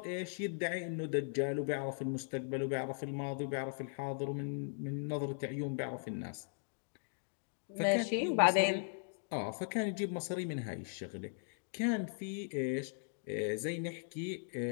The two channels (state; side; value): silent; right; digital silence